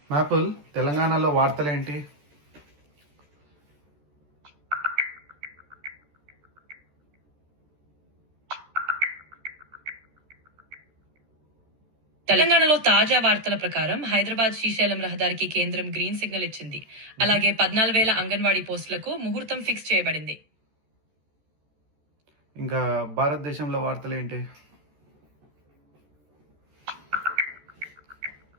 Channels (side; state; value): left; late; 14 ms